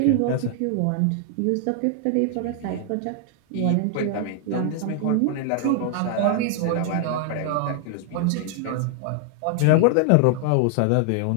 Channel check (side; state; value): both; different; correlation 0.00